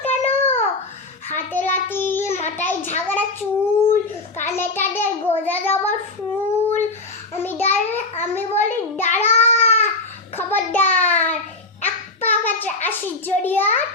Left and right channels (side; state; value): right; quieter; 3.2 dB